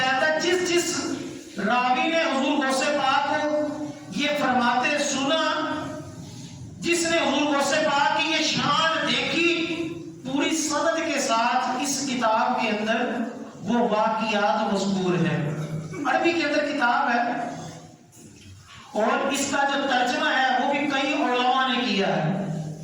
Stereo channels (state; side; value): identical; both; correlation 1.00